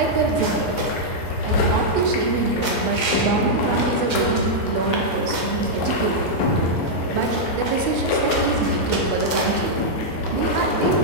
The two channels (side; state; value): right; late; 6.3 ms